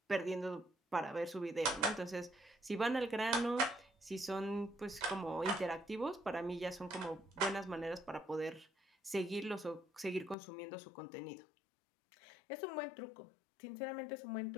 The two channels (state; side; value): drops out; right; at 10.4 s